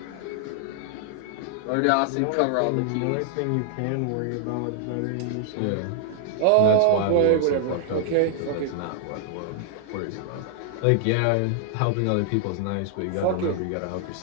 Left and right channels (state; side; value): different; both; correlation 0.00